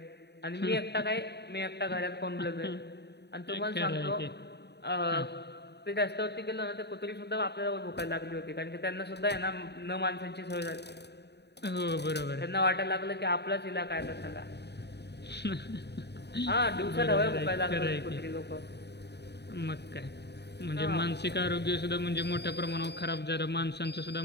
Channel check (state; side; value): late; right; 0.49 ms